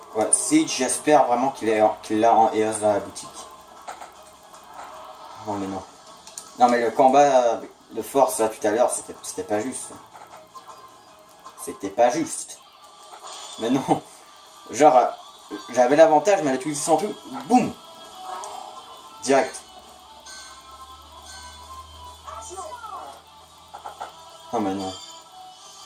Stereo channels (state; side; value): identical; both; correlation 1.00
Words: ouais, Siege, j'espère vraiment qu'il l'a en EOS dans la boutique. Non mais non. Non mais le combat de force là tout à l'heure, c'était pas juste. C'était pas juste. Mais non. Genre, j'avais l'avantage, mais elle a utilisé son truc. Boum. Direct. Non mais non.